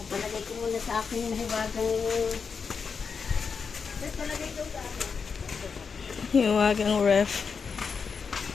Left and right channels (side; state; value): right; quieter; 5.6 dB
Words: Palagay ko muna sa akin yung hiwagang... Hiwagang ref.